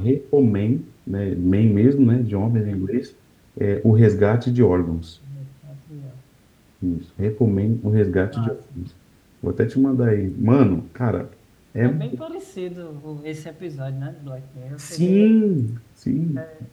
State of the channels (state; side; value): identical; both; correlation 1.00